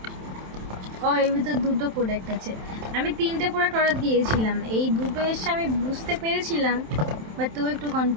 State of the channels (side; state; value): left; late; 27 ms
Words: ও এর ভিতর দুটো প্রোডাক্ট আছে। আমি 3টে প্রোডাক্ট অর্ডার দিয়েছিলাম, এই দুটো এসে আমি বুঝতে পেরেছিলাম, বাট তুই একটু